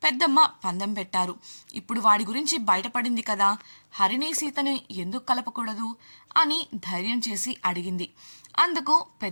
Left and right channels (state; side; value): inverted; both; correlation -1.00